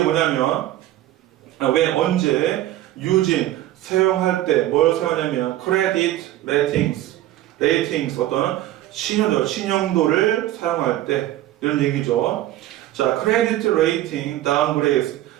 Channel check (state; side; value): quieter; left; 14.2 dB